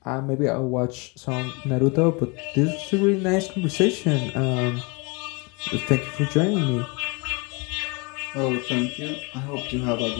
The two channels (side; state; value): right; quieter; 29.5 dB